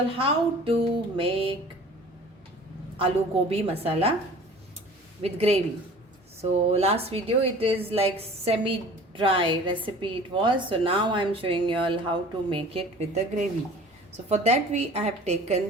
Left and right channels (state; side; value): normal; both; correlation 0.45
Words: all how to make aloo gobi masala with gravy. So last video it is like semi dry recipe it was. So now I am showing you all how to make it with the gravy. So for that I have